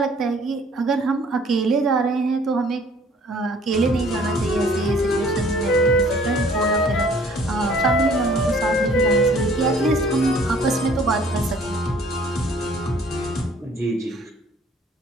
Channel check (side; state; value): both; normal; correlation 0.56